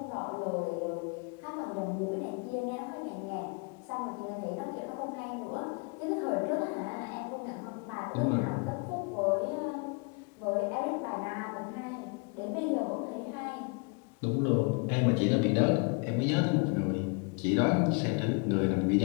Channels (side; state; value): right; quieter; 33.6 dB